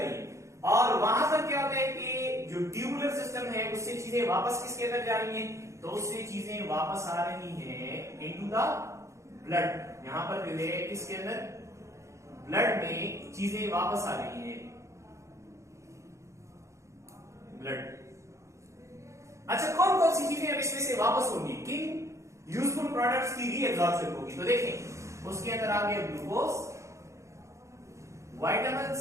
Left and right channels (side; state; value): left; late; 0.14 ms